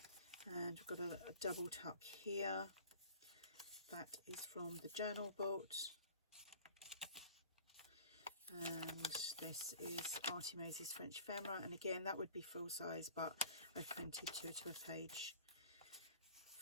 And we've got a double tuck here. That is from the Journal Boat. And this is ARTYmaze's French Ephemera, and again that would be full size, but I've printed two to a page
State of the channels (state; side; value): inverted; both; correlation -0.46